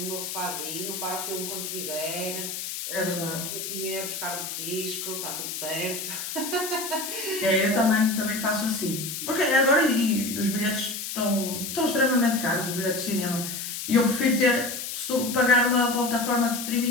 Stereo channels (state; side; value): noise; left; hiss, 6 dB below the sound